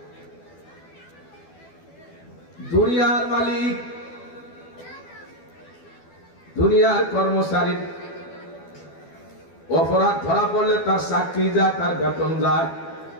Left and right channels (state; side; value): late; right; 12 ms